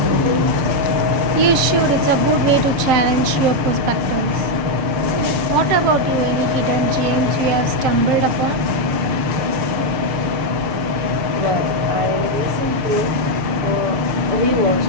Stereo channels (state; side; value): late; left; 6.9 ms